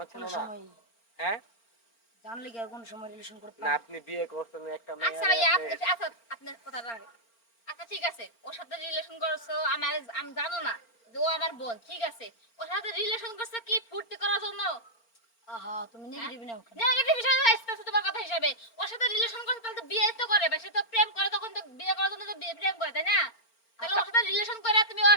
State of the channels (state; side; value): late; right; 4.4 ms